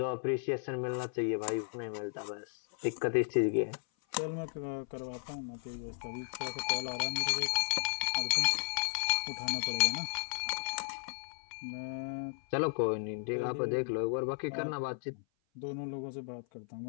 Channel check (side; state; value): right; silent; 55 dB below the other